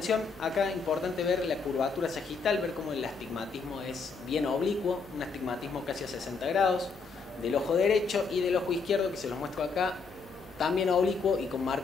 Acá es importante ver la curvatura sagital, ver cómo el astigmatismo es bien oblicuo, un astigmatismo casi a 60 grados, del ojo derecho y del ojo izquierdo, que se los muestro acá, también oblicuo y con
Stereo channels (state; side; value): quieter; right; 4.8 dB